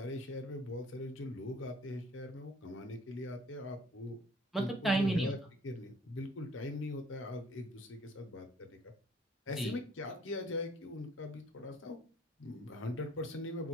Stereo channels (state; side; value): normal; both; correlation 0.57